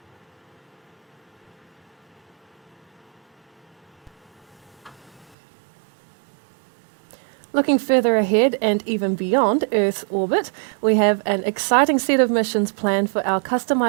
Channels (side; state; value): left; drops out; at 5.4 s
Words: Looking further ahead and even beyond Earth's orbit, we have an exciting set of missions planned for our